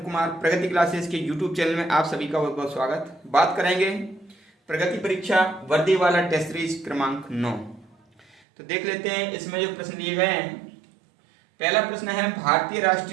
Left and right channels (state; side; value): drops out; left; at 8.4 s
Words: कुमार प्रगति क्लासेस के YouTube चैनल में आप सभी का बहुत बहुत स्वागत। बात करेंगे प्रगति परीक्षा वर्दी वाला टेस्ट सीरीज क्रमांक 9। तो देख लेते हैं इसमें जो प्रश्न दिए गए हैं। पहला प्रश्न है, भारतीय